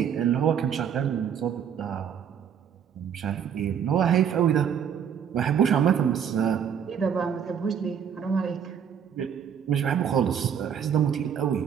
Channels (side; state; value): left; quieter; 8.1 dB